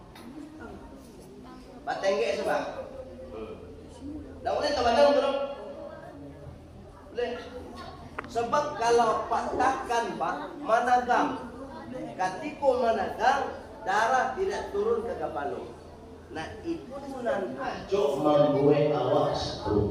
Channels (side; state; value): both; identical; correlation 1.00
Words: Pak Tengge sebab. Dah boleh teman-teman belum? Boleh. Sebab kalau Pak tekan Pak managam, ketika managam darah tidak turun ke kepala. Nah itu nan ajo membuat awak